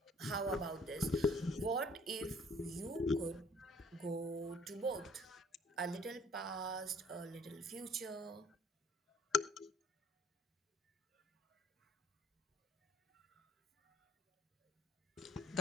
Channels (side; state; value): both; normal; correlation 0.59